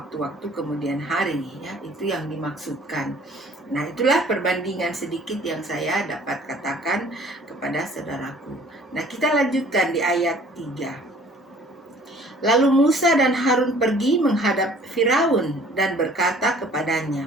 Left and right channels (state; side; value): normal; both; correlation 0.53